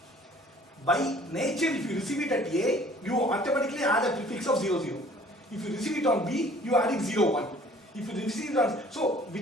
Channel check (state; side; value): normal; both; correlation 0.53